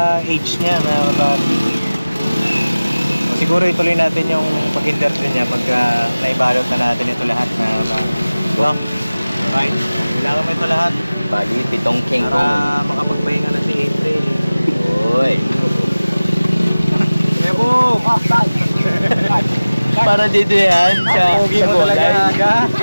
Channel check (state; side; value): inverted; both; correlation -0.99